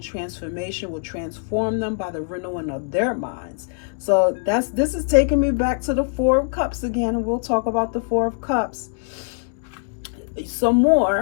transformation will transform them by the renewing of their minds. So this is taking me back to the Four of Cups again, and we'll talk about the Four of Cups some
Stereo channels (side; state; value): right; silent; 62 dB below the other